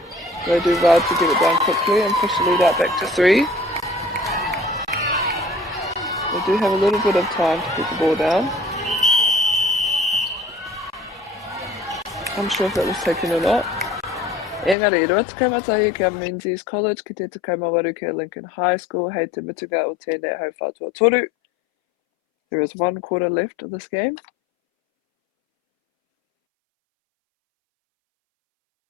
They do well to get it down quickly and push the lead out back to 3. They do have a little bit of time to put the ball down. I'm sure if that was taken or not. Engari, rua te kaumatahi kia Menzies College ki te kaumawaru kia Lincoln High School hei te mutuga o tēnei hau whātua toru. There is 1 quarter left of this game.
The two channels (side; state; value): right; drops out; at 14.8 s